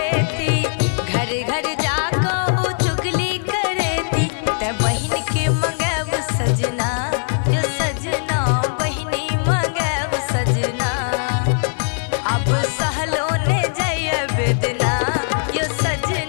घर घर जाको ओ चुगली करेती। ते बहिन के मंगब सजना यो सजना, बहिनी मंगब सजना। अब सहलो ने जय बेदना यो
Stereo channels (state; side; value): silent; right; 57 dB below the other